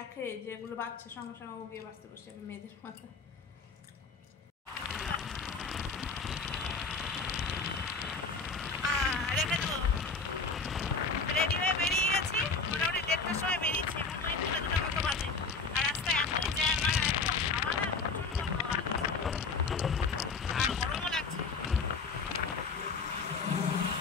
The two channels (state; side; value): quieter; right; 4.5 dB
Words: যে এগুলো বাচ্চা, সঙ্গে সঙ্গে ও গিয়ে বাঁচতে বসে যাবে, মেয়েদের মাথা। রেখে দেবো, রেডি হয়ে বেরিয়ে গেছি, মোটামুটি 1:30টার সময় বেরিয়েছি, এখন ওই 2:00 মতো বাজে। আর রাস্তায় এত জ্যাম, আর এত হাওয়া না, প্রচণ্ড হাওয়া, আর গরমও লাগছে।